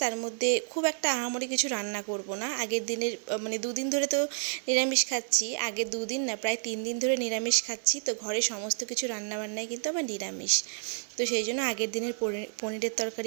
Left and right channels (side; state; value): left; silent; digital silence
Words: তার মধ্যে খুব একটা আহামরি কিছু রান্না করব না। আগের দিনের মানে দুদিন ধরে তো নিরামিষ খাচ্ছি, আগের দুদিন না প্রায় 3 দিন ধরে নিরামিষ খাচ্ছি, তো ঘরে সমস্ত কিছু রান্নাবান্নাই কিন্তু আবার নিরামিষ। তো সেই জন্য আগের দিনের পনিরের